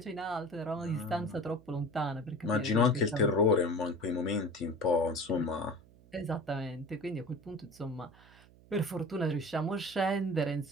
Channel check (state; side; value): noise; right; hum, 25 dB below the sound